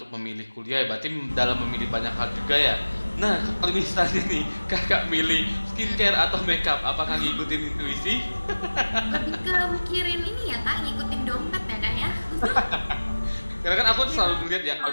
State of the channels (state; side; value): inverted; both; correlation -1.00